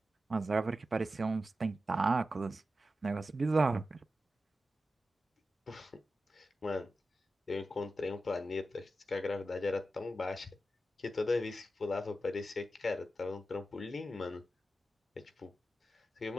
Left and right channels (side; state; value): both; normal; correlation 0.91